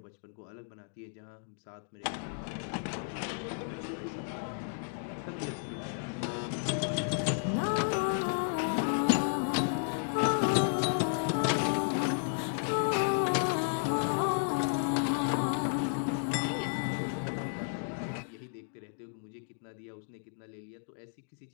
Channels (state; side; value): silent; right; digital silence